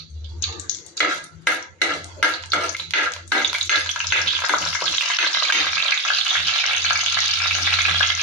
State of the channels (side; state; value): both; normal; correlation 0.15